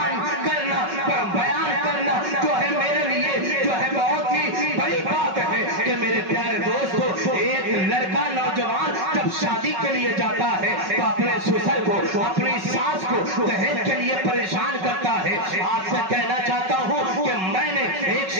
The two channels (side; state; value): left; late; 5.4 ms